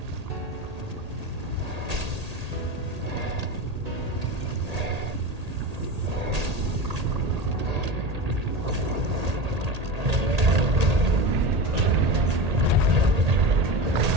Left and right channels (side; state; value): left; late; 1.8 ms